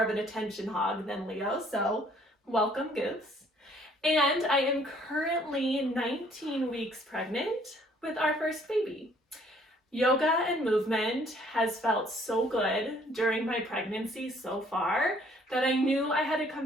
of an attention hog than Leo, so welcome goose. And I am currently 19 weeks pregnant with our first baby. Yoga and movement has felt so good during my pregnancy so far that I knew I had to come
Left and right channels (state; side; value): normal; both; correlation 0.60